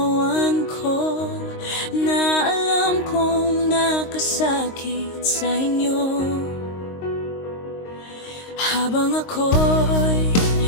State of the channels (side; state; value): right; late; 22 ms